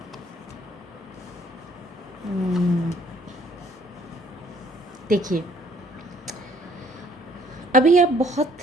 देखिए, अभी आप बहुत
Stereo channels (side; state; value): both; normal; correlation 0.62